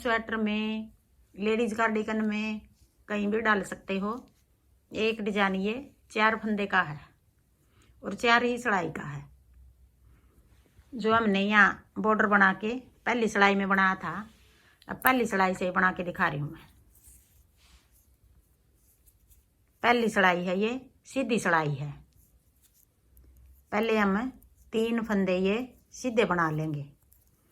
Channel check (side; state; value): both; identical; correlation 1.00